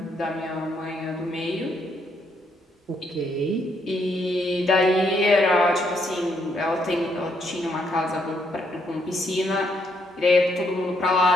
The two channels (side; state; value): both; normal; correlation 0.74